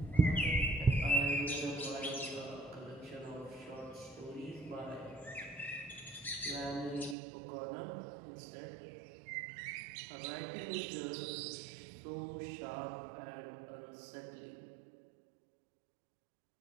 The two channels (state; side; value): drops out; left; at 7.2 s